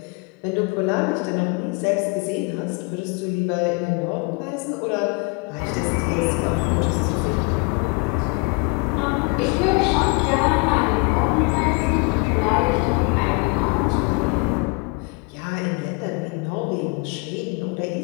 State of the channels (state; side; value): quieter; right; 30.7 dB